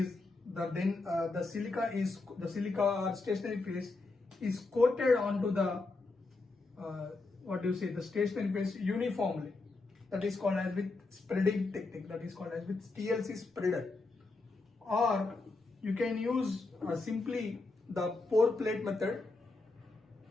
the silica or stationary phase is coated onto the the stationary phase uniformly. That is called as with spreading technique. That is called as with TLC spreader. Or you can use simply the pour plate method.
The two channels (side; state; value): right; quieter; 3.5 dB